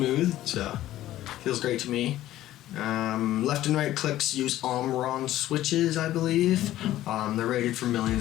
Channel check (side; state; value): right; quieter; 14.2 dB